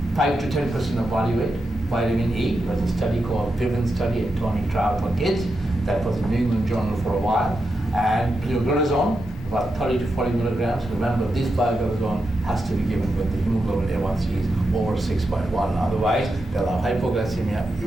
5 to 10% of body weight. Vitamin E, there was a study called Vivian study, a tonic trial for kids. That was in New England Journal for a while. And pioglitazone, about 30 to 40 milligrams. Remember, this pioglitazone has to be given when the hemoglobin A1C is over 6.1. Otherwise, they'll have hypoglycemia.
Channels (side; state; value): both; normal; correlation 0.87